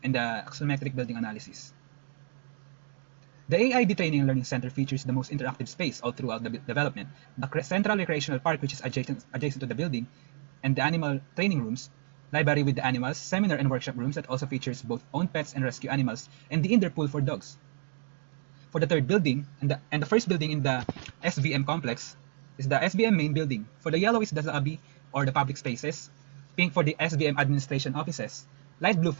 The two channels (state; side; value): silent; left; 58 dB below the other